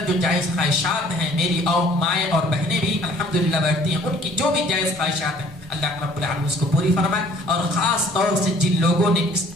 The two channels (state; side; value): normal; both; correlation 0.56